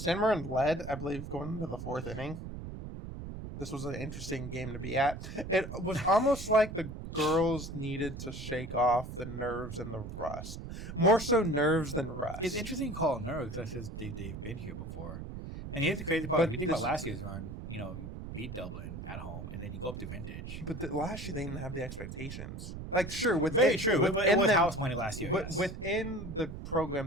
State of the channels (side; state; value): right; noise; rumble, 9 dB below the sound